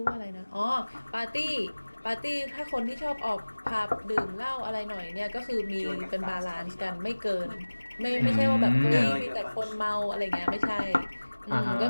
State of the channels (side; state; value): both; inverted; correlation -1.00